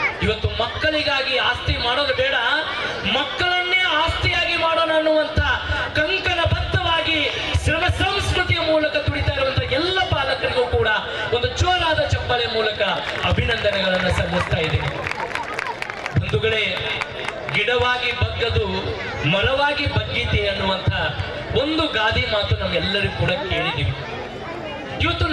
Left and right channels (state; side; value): identical; both; correlation 1.00